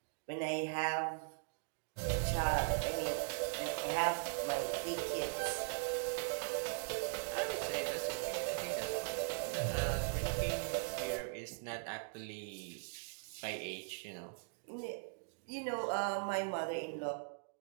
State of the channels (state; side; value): silent; left; digital silence